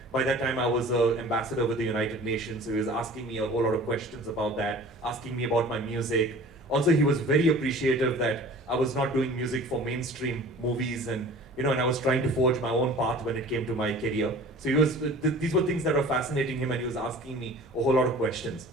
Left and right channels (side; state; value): both; normal; correlation 0.43